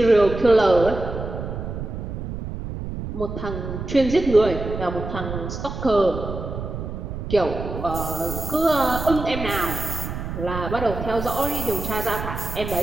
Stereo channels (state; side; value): noise; right; rumble, 6 dB below the sound